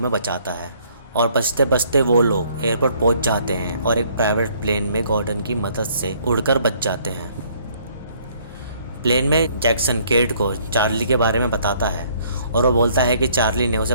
बचाता है और बचते बचते वो लोग एयरपोर्ट पहुंच जाते हैं और एक प्राइवेट प्लेन में गॉर्डन की मदद से उड़कर बच जाते हैं। प्लेन में जैक्सन केट को चार्ली के बारे में बताता है और वो बोलता है कि चार्ली ने उसे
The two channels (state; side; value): inverted; both; correlation -0.63